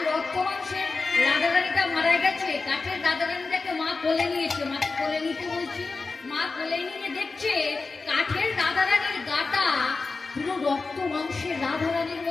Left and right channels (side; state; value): right; quieter; 4.0 dB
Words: রক্ত মাংসের রাধারানীটা মারা গেছে, কাঠের রাধারানীটাকে মা কোলে নিয়েছে, মাকে কোলে নিতে বলছি। মা কোলে নিয়ে দেখছে কাঠের রাধারানীর গাটা পুরো রক্ত মাংসের রাধারানীর